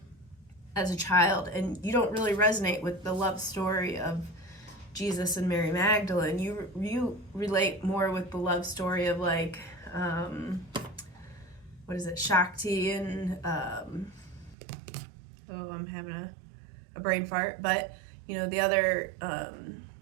as a child, and you don't really resonate with the love story of Jesus and Mary Magdalene. You relate more with the love story of like what is it, Shakti and I'm having a brain fart, but the other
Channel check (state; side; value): drops out; left; at 14.6 s